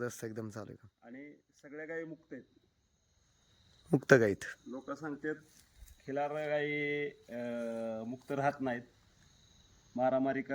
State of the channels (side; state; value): both; identical; correlation 1.00